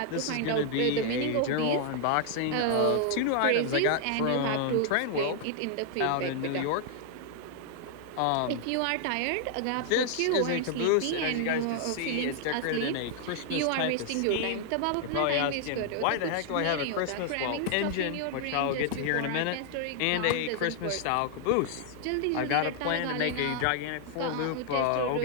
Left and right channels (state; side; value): different; both; correlation 0.00